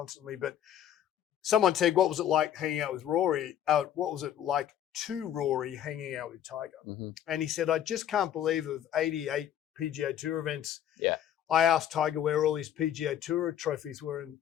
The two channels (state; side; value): quieter; right; 10.5 dB